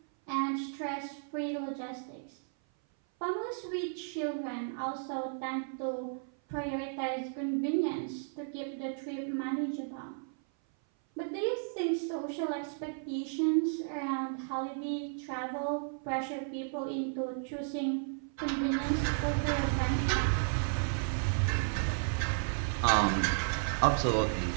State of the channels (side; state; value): left; silent; 55 dB below the other